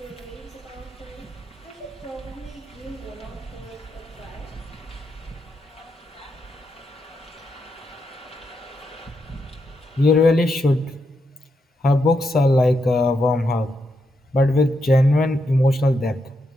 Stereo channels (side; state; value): both; normal; correlation 0.82